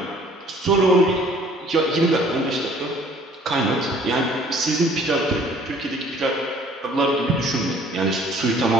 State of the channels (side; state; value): both; normal; correlation 0.55